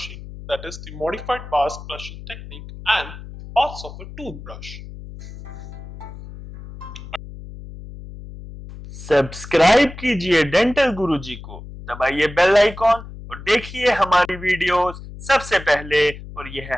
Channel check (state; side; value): noise; left; hum, 13 dB below the sound